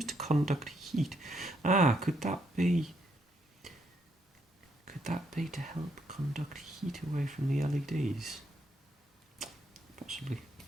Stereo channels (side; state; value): both; normal; correlation 0.75